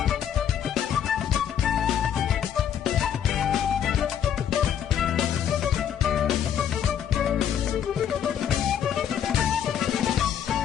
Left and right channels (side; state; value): right; quieter; 9.1 dB